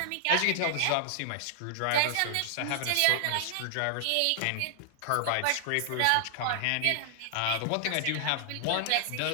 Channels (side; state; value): both; different; correlation 0.00